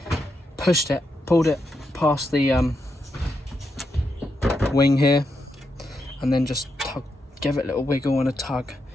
pushed it, pulled it past the wing here, and then just give it a little wiggle and a tug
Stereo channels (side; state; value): both; normal; correlation 0.83